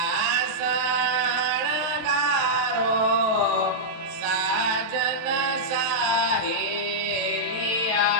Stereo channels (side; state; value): left; late; 23 ms